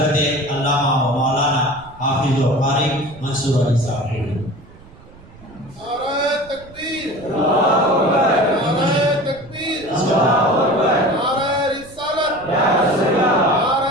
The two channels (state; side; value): noise; right; rumble, 22 dB below the sound